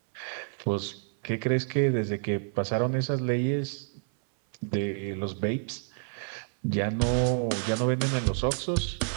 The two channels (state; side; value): silent; left; 58 dB below the other